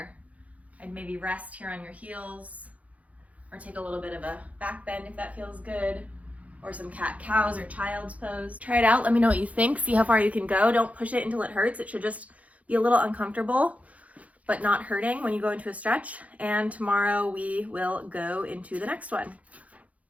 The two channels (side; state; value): left; late; 0.068 ms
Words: I'd maybe rest here on your heels, or take a little bit of a back bend if that feels good, or some cat-cows or child's pose. Try it out, let me know what you think, see how far you can go. Don't push it until it hurts. It should just be a little uncomfortable, but not hurting when you go into a stretch. And tomorrow we will go into the next one.